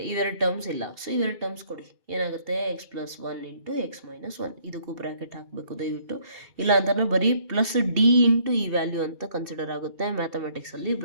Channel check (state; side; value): late; left; 2.7 ms